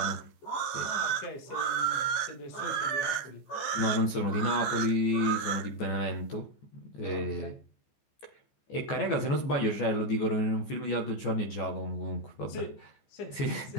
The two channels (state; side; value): late; right; 14 ms